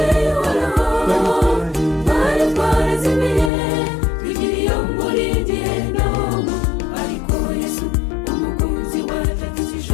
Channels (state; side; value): drops out; right; at 3.5 s